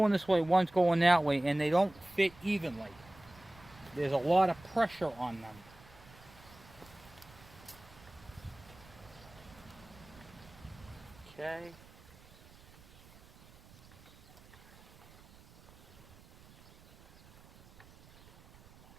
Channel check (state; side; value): noise; right; rumble, 23 dB below the sound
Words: this way, one's going that way, and they don't fit evenly. There's a lot of pressure on them. Okay.